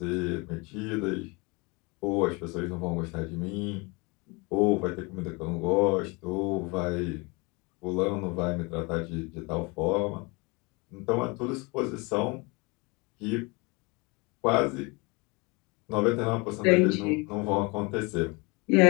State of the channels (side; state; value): right; quieter; 27.7 dB